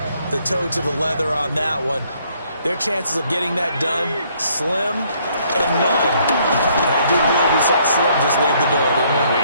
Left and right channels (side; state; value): both; inverted; correlation -0.66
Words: toe to the leather on that one, their chances of getting that done, slim and none. And I do believe we saw Slim just leave the door, didn't we? We